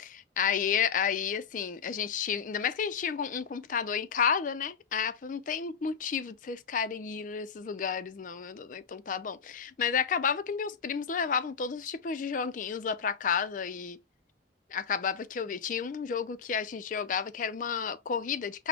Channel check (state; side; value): quieter; right; 6.5 dB